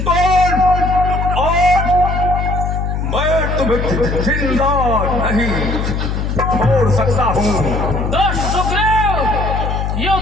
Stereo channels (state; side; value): noise; left; hum, 1 dB below the sound